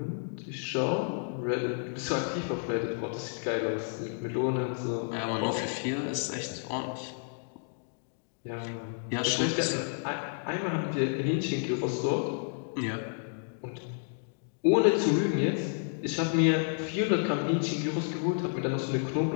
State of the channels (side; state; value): right; silent; 57 dB below the other